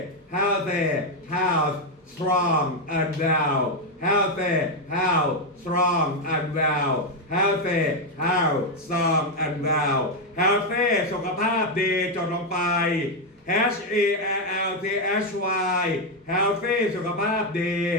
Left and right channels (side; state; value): both; normal; correlation 0.04